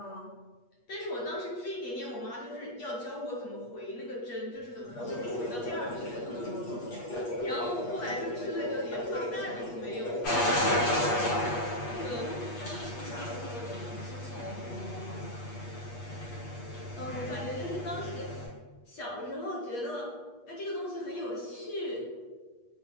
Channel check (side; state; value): right; late; 8.3 ms